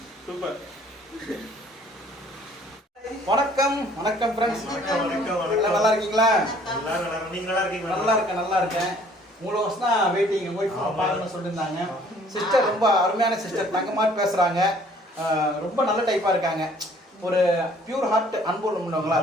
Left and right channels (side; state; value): both; normal; correlation 0.57